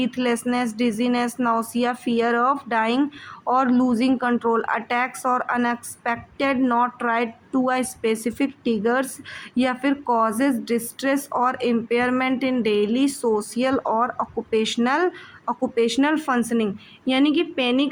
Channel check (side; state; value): both; identical; correlation 1.00